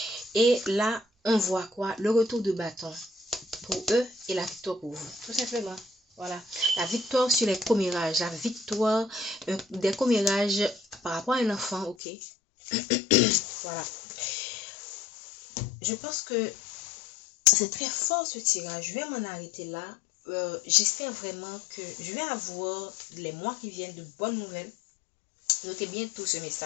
Et là, on voit quoi? Le retour de bâton pour eux et la victoire pour vous. Tout simplement. Voilà. La victoire sur les commérages. La victoire des commérages par rapport à un enfant. Ok? Voilà. Je pense que c'est très fort ce tirage. Je vais m'en arrêter là. J'espère vraiment que je vais avoir les mois qui viennent de bonnes nouvelles. Notez bien tout ce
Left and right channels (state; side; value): drops out; right; at 12.0 s